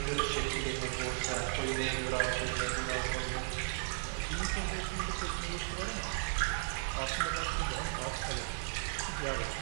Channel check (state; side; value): silent; left; digital silence